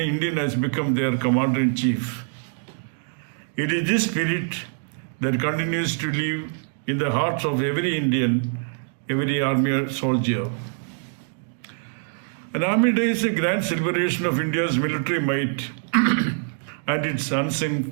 has become their commander-in-chief. It is this spirit that continues to live in the hearts of every Indian, every army soldier. An Army Day is a grand celebration of India's military might and its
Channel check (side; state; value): left; silent; 62 dB below the other